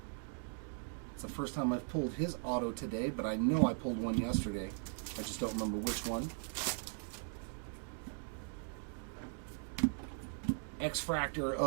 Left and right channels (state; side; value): silent; left; 52 dB below the other